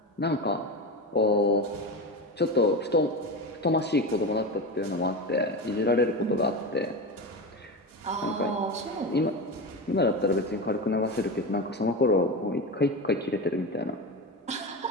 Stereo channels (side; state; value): both; normal; correlation 0.22